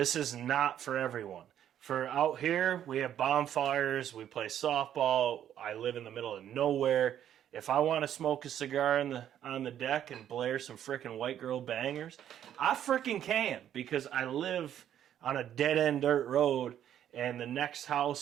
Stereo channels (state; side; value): quieter; left; 10.4 dB